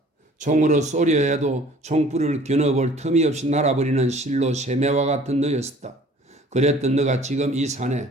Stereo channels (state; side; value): normal; both; correlation 0.52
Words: 총으로 쏘려 해도 총불을 겨눠볼 틈이 없이 날아버리는 실로 새매와 같은 너였었다. 그랬던 너가 지금 이 산에,